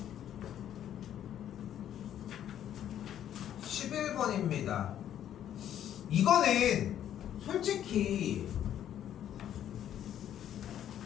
11번입니다. 이거는 솔직히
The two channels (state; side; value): quieter; right; 10.6 dB